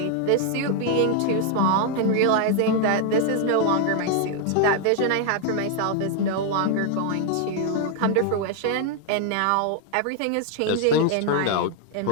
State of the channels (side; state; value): both; different; correlation 0.00